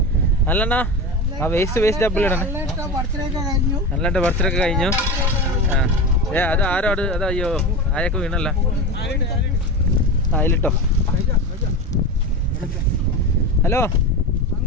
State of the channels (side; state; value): both; normal; correlation 0.24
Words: അല്ലണ്ണാ ആ waste double ഇടണേ. നല്ലതായിട്ട് ബർത്ത്ഡേ ഒക്കെ കഴിഞ്ഞു. അത് ആരോ അത് അയ്യോ ആയൊക്കെ വീണല്ല. അതിലിട്ടോ. ഹലോ